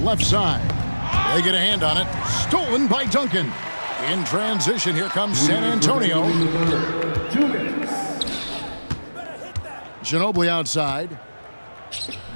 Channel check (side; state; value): both; inverted; correlation -1.00